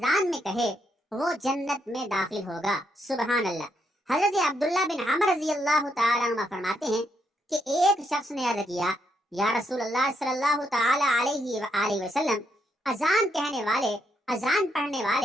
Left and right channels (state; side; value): normal; both; correlation 0.77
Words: میں کہے وہ جنت میں داخل ہوگا۔ سبحان اللہ۔ حضرت عبداللہ بن عمر رضی اللہ تعالیٰ عنہ فرماتے ہیں کہ ایک شخص نے عرض کیا، یا رسول اللہ صلی اللہ تعالیٰ علیہ وآلہ وسلم، اذان کہنے والے، اذان پڑھنے